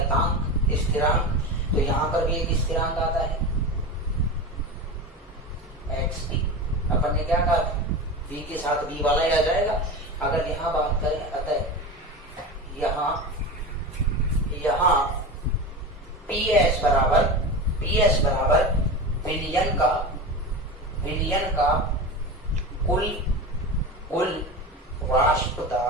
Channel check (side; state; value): both; normal; correlation 0.26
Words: स्थिरांक। तो यहाँ पर भी एक स्थिरांक आता है XP। अपन ने क्या कहा, B के साथ B वाला ही आ जाएगा। अगर यहाँ बात करें, अतः यहाँ PS बराबर विलयन का कुल वाष्प